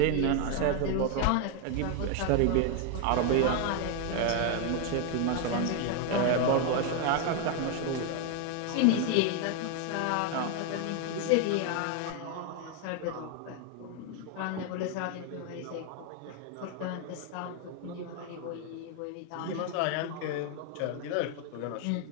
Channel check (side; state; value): both; different; correlation 0.01